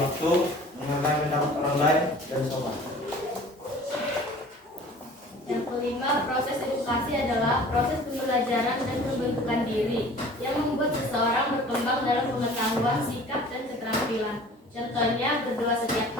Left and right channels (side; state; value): both; normal; correlation 0.46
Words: menghargai pendapat orang lain, dan sopan. Yang kelima, proses edukasi adalah proses pembelajaran dan pembentukan diri yang membuat seseorang berkembang dalam pengetahuan, sikap, dan keterampilan. Contohnya, berdoa setiap